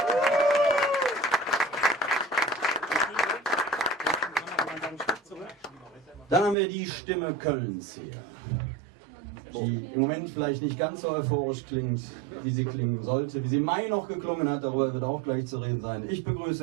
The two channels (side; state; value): left; drops out; at 6.6 s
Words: Dann haben wir die Stimme Kölns hier, die im Moment vielleicht nicht ganz so euphorisch klingt, wie sie klingen sollte, wie sie im Mai noch geklungen hat, darüber wird auch gleich zu reden sein. Ich